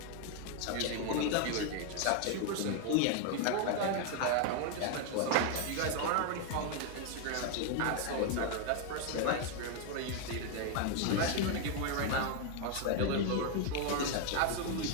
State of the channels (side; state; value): both; different; correlation 0.01